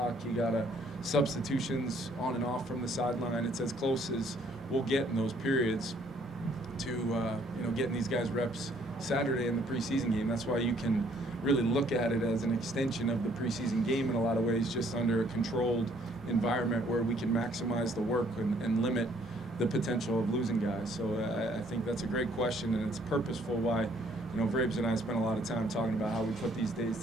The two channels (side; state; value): both; normal; correlation 0.64